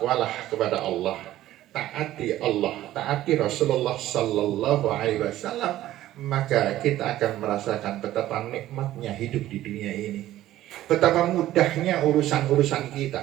kepada Allah, taati Allah, taati Rasulullah Sallallahu Alaihi Wasallam, maka kita akan merasakan betapa nikmatnya hidup di dunia ini, betapa mudahnya urusan-urusan kita,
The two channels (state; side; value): quieter; left; 14.1 dB